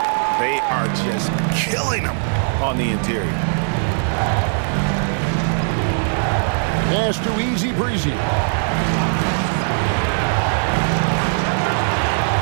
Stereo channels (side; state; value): left; silent; digital silence